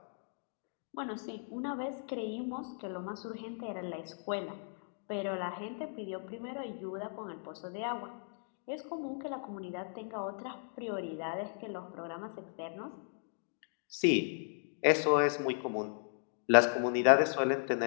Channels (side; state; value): right; silent; digital silence